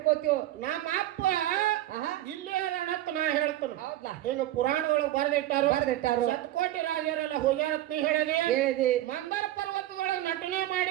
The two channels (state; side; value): quieter; left; 14.3 dB